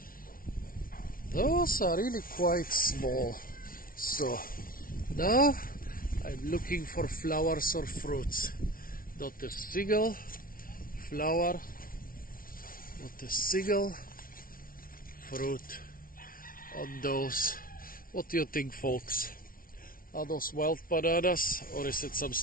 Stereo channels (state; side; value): late; right; 0.42 ms